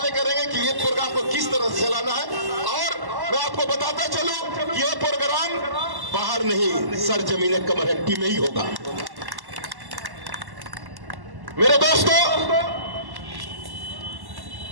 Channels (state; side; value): late; left; 1.1 ms